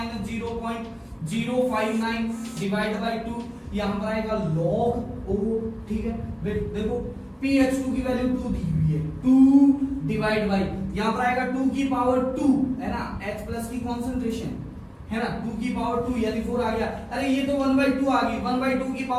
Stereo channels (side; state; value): both; identical; correlation 1.00